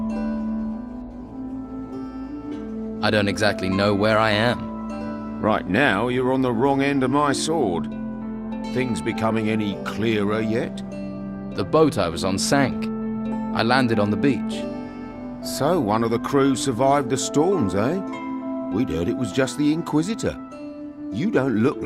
I don't exactly know where I am. Right now, you're on the wrong end of my sword. Things becoming any clearer yet? The boat I was on sank. I landed on the beach. So, one of the crew survived the storms, eh? We'd heard it was just the Inquisitor. You don't look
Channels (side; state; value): both; identical; correlation 1.00